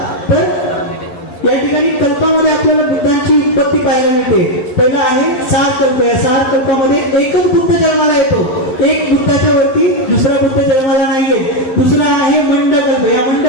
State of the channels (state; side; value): late; right; 12 ms